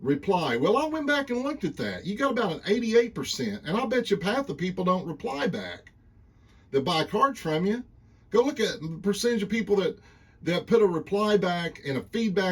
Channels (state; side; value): identical; both; correlation 1.00